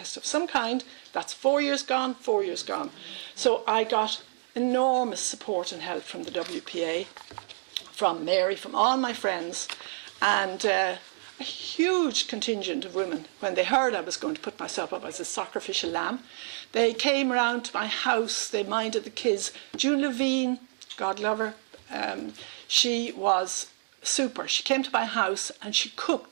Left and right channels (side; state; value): left; silent; 59 dB below the other